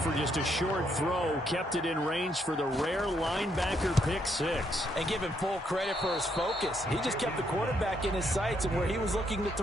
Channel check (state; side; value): normal; both; correlation 0.74